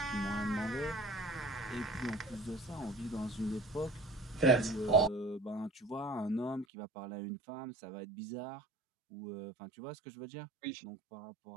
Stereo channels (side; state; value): left; drops out; at 6.7 s